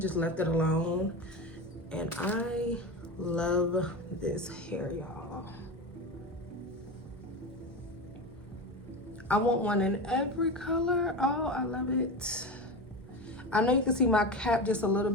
left it alone. And I love this hair, y'all. I want one in every color. Oh, I love it. I know you can see my cap just a little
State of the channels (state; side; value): normal; both; correlation 0.23